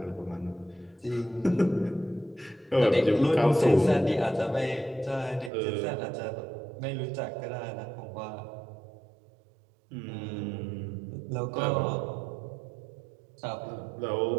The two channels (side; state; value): left; drops out; at 5.5 s